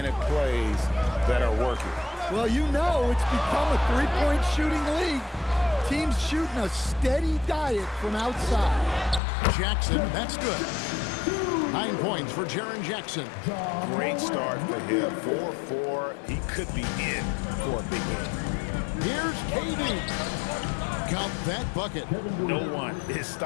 plays that are working. Well, you know it's become a three-point shooting league. Teams shooting a steady diet from outside. Jackson, that's good. 9 points for Jaren Jackson. Great start for him. 4-4. He could be in for a big game. Here's KD. Count that bucket. No one is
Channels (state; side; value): drops out; right; at 9.2 s